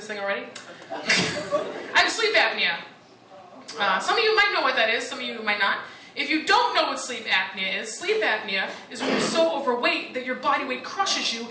thing already. I have sleep apnea. Some of you might know what that is, some of you might not. If you don't know what sleep apnea is when you're so overweight that your body weight crushes you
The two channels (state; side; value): identical; both; correlation 1.00